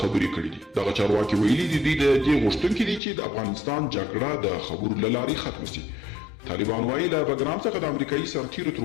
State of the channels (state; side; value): drops out; right; at 3.0 s